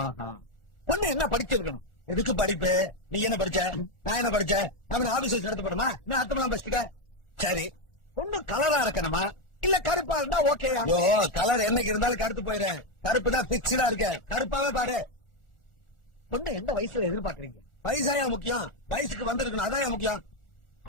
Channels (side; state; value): right; late; 1.4 ms